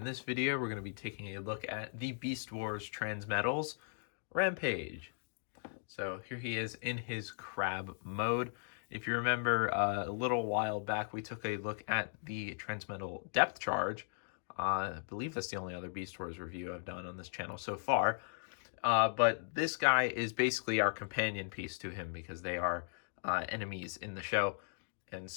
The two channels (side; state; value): right; silent; digital silence